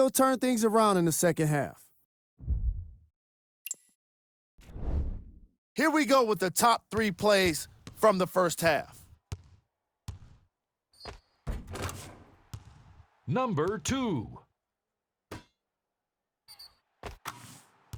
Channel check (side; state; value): both; identical; correlation 1.00